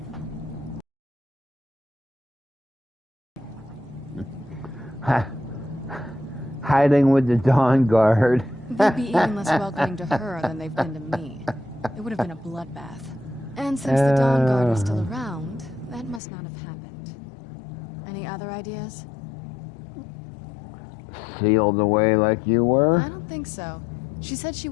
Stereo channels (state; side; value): drops out; right; at 16.2 s